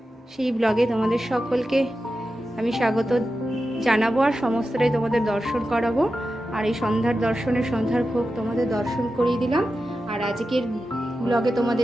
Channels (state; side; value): normal; both; correlation 0.91